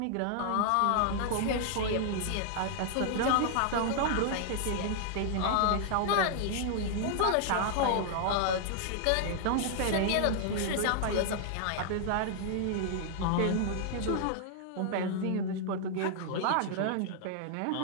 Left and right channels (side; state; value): both; different; correlation 0.00